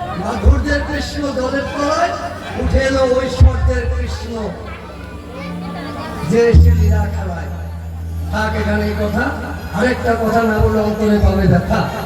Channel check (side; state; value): both; identical; correlation 1.00